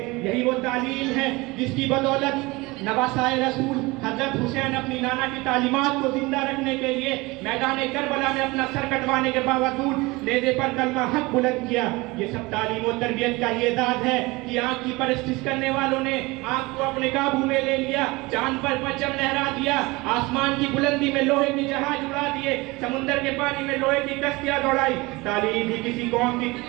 یہی وہ تعلیم ہے جس کی بدولت نواسائے رسول حضرت حسین اپنی نانا کی تعلیمات کو زندہ رکھنے کے لیے میدان کربلا میں اپنا سر کٹوانے کے باوجود نیزے پر کلمہ حق بلند کیا۔ یہ سب تعلیم و تربیت کا ہی اعزاز ہے کہ آنکھ کی پرستش کرنے والوں نے آنکھ کو اپنے قابو میں لے لیا، چاند پر پرچم لہرا دیا، آسمان کی بلندی میں لوہے کی جہاز اڑا دیے، سمندر کے پانی میں لوہے کی کشتیاں دوڑائی۔ تعلیم ہی کسی قوم کی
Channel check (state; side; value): quieter; left; 23.0 dB